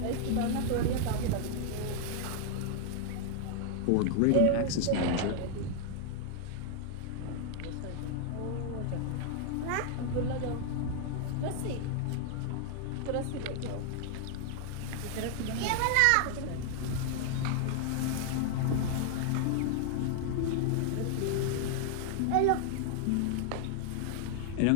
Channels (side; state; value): both; different; correlation 0.00